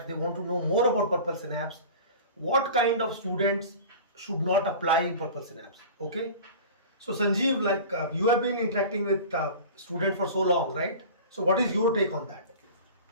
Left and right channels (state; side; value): inverted; both; correlation -0.37